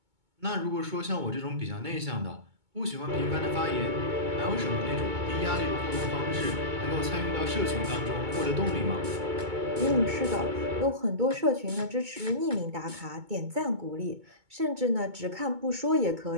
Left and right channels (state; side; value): late; left; 2.2 ms